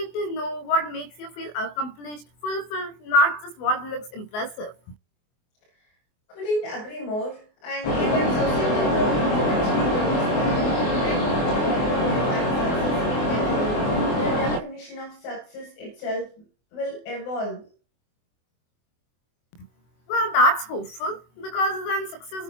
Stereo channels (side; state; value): right; late; 24 ms